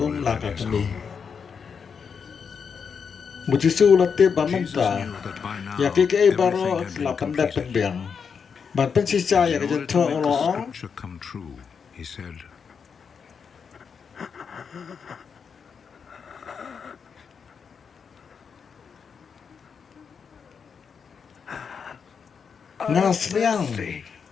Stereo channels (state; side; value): quieter; right; 6.3 dB